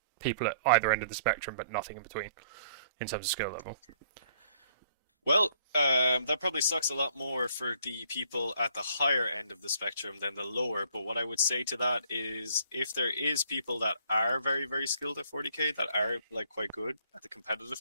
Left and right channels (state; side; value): inverted; both; correlation -0.63